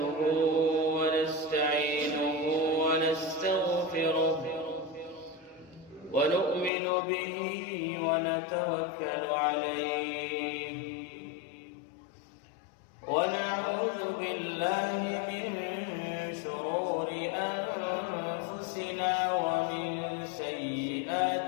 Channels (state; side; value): drops out; right; at 6.7 s